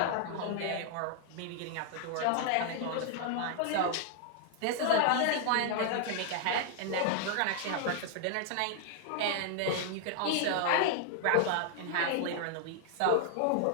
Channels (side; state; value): both; different; correlation 0.00